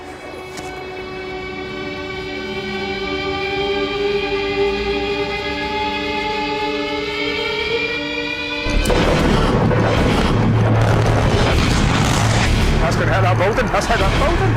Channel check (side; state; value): both; identical; correlation 1.00